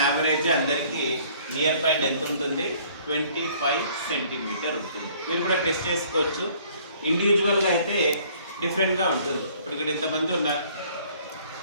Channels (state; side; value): inverted; both; correlation -0.57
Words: యావరేజ్ అందరికీ నియర్ పాయింట్ ఎంత ఉంటుంది? 25 సెంటీమీటర్ ఉంటుంది. మీరు కూడా టెస్ట్ చేసుకోవచ్చు. ఇండివిజువల్గా అయితే డిఫరెంట్గా ఉంటుంది. ఇప్పుడు ఇక్కడ ఎంతమంది ఉన్నారు?